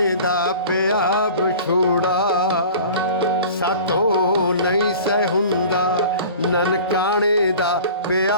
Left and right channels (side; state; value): both; inverted; correlation -0.41